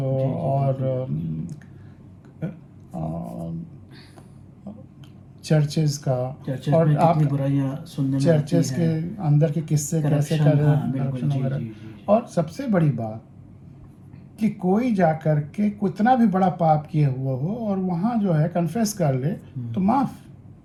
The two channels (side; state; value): both; identical; correlation 1.00